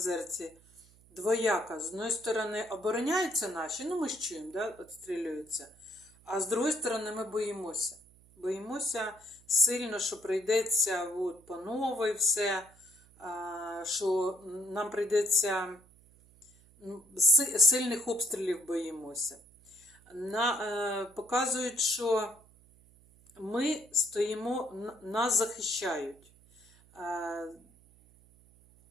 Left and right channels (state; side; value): noise; right; hum, 28 dB below the sound